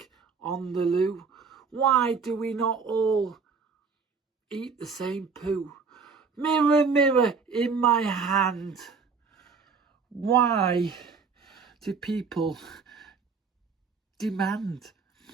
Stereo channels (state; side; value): quieter; left; 5.3 dB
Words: on the loo, why do we not all eat the same poo? Mirror, mirror in my hand, why do people demand